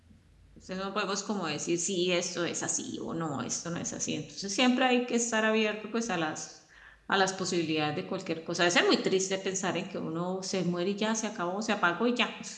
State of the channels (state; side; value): identical; both; correlation 1.00